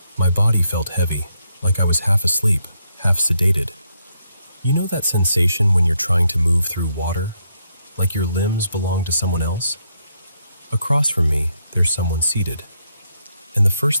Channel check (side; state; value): both; inverted; correlation -0.78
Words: My body felt heavy, like I was half asleep, half sedated. You know that sensation when you're trying to move through water? Like your limbs belong to someone else? Across from me, there's someone seated. And the